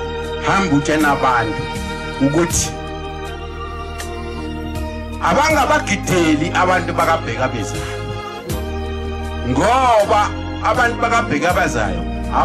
hamba utshena abantu ukuthi abangabagideli abantu bakabheka bezayo, ngoba abantu bakabheka bezayo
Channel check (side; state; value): both; identical; correlation 1.00